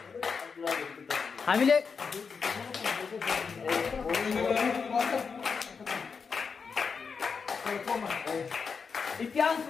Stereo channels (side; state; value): right; quieter; 5.5 dB